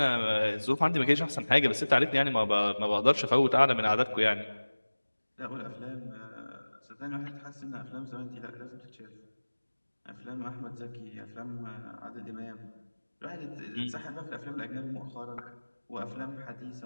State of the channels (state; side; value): inverted; both; correlation -1.00